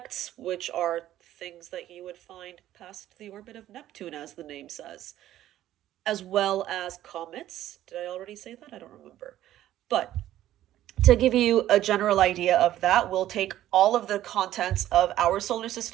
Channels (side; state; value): left; quieter; 13.2 dB